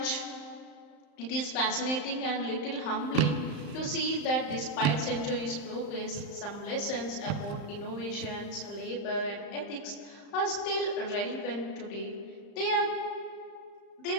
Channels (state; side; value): late; right; 35 ms